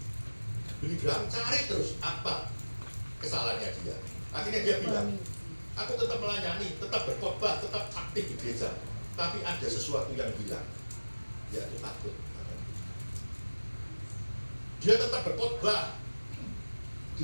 Billy Graham cari terus apa kesalahannya dia. Akhirnya dia bilang, aku tetap melayani, tetap berkhotbah, tetap aktif di gereja. Tapi ada sesuatu yang hilang, yaitu takut. Dia tetap berkhotbah,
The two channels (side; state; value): both; inverted; correlation -1.00